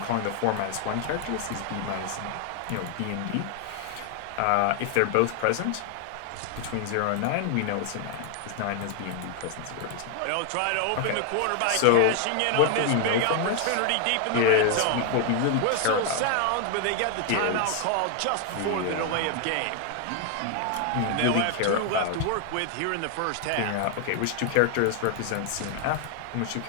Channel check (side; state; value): both; different; correlation 0.00